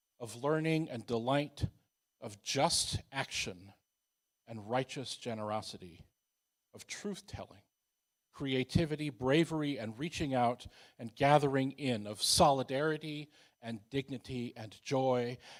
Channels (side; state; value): both; identical; correlation 1.00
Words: of learning and delight, of just action and righteous generosity, of truth-telling, creativity, bravery, and reaching out and gathering in, of solidarity and dignity and joy,